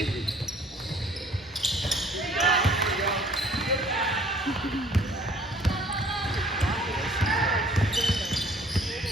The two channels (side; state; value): both; normal; correlation 0.55